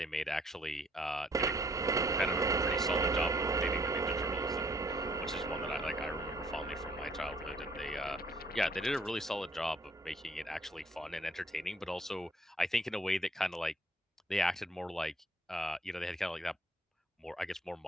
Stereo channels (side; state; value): both; normal; correlation 0.62